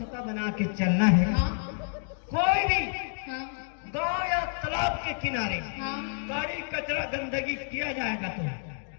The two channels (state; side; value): silent; right; 58 dB below the other